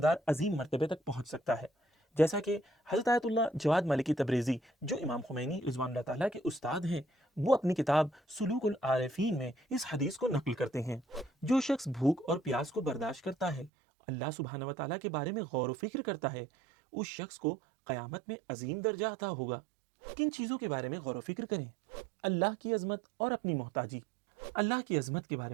अजीम मर्तबे तक पहुंच सकता है, जैसा कि हज़रत आयतुल्लाह जवाद मलिकी तब्रेज़ी, जो इमाम खुमैनी रिज़वानुल्लाह ताला के उस्ताद हैं, वो अपनी किताब सुलूकुल आरिफीन में इस हदीस को नकल करते हैं, जो शख्स भूख और प्यास को बर्दाश्त करता है, अल्लाह सुब्हानहू व तआला के बारे में गौर व फिक्र करता है, उस शख्स को क़यामत में अजीम दर्जा अता होगा। किन चीज़ों के बारे में गौर व फिक्र करें? अल्लाह की अजमत और अपनी मोहताजी। अल्लाह की अजमत के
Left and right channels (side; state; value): left; drops out; at 13.7 s